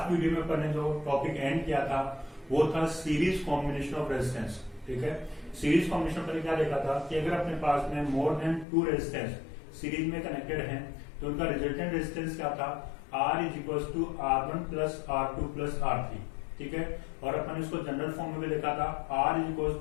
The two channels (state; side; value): drops out; right; at 8.7 s